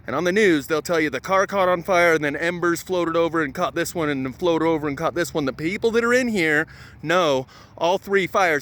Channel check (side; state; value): both; identical; correlation 1.00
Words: And on the news they'll tell you the car caught on fire and then embers floated over and caught this one and then floated over and caught this one. The people that are in here know all three